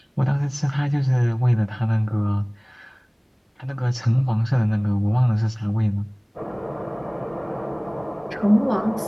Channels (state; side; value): identical; both; correlation 1.00